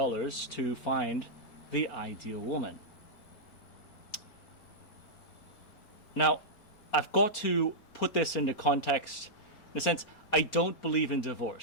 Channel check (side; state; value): right; late; 4.4 ms